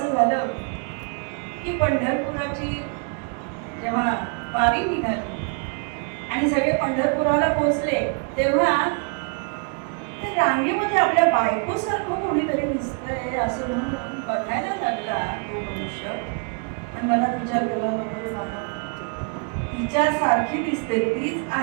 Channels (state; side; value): quieter; left; 38.4 dB